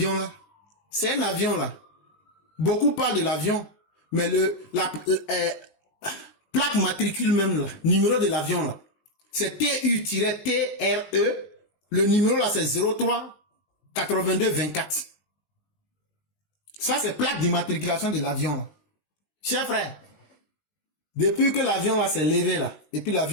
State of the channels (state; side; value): late; right; 19 ms